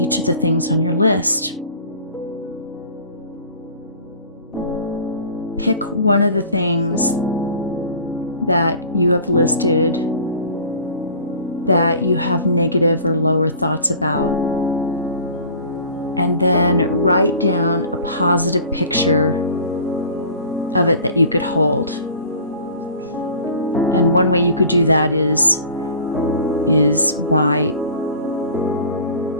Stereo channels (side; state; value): both; inverted; correlation -0.45